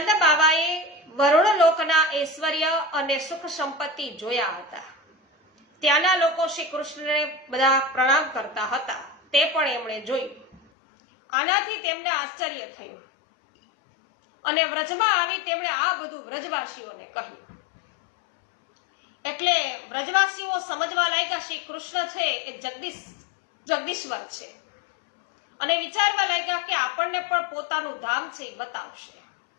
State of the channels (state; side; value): drops out; right; at 10.6 s